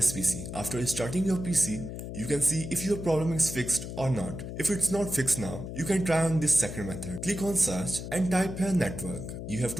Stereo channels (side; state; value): left; noise; hum, 8 dB below the sound